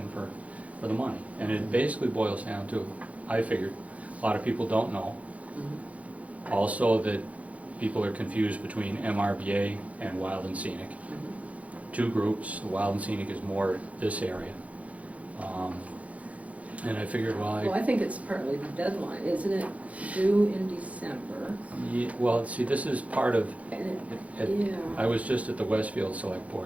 for the money? And it basically boils down to, I figured, a lot of people don't know. Mhm. Also that people are confused between MRBA and Wild and Scenic. Mhm. Two groups, the Wild and Scenic is more this area. And I figured, Well, I think it's partly the deadline, isn't it due in December? well, see, this is part of, And it- I was just at the Westfield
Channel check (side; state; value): left; late; 0.067 ms